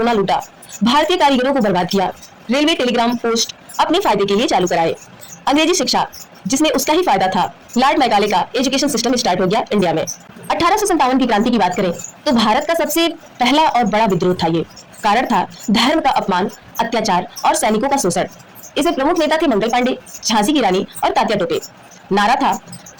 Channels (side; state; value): both; identical; correlation 1.00